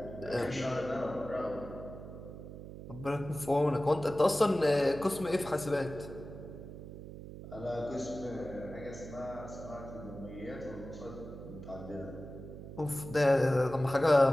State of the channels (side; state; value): right; noise; hum, 12 dB below the sound